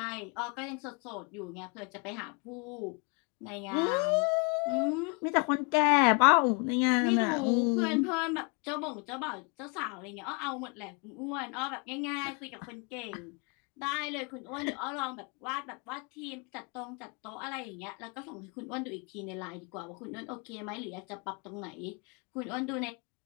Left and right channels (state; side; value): quieter; right; 34.1 dB